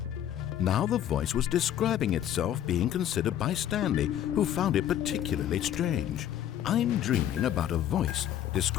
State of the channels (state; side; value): quieter; right; 11.0 dB